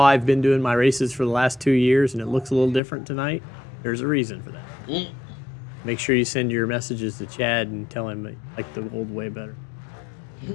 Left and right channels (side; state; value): right; drops out; at 2.8 s